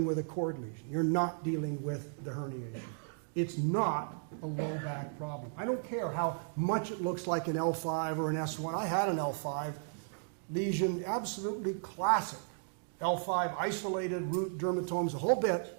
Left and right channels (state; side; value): silent; left; digital silence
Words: with a cord lesion. You're not dealing with the herniation. It's not a low back problem. I don't care how much it looks like an L5 or an S1. I had an L5 lesion, absolutely classic. L5 isolated root dermatomes, a whole bit,